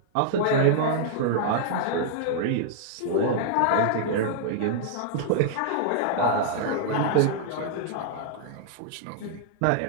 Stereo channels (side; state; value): both; different; correlation -0.01